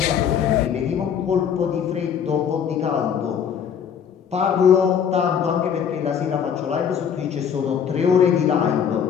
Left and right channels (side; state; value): right; quieter; 7.8 dB